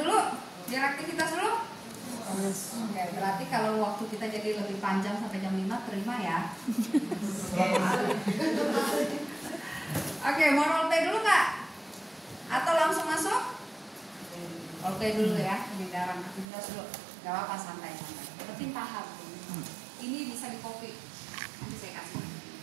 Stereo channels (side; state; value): left; drops out; at 16.4 s